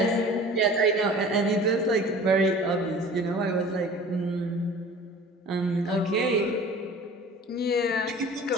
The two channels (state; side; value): normal; both; correlation 0.44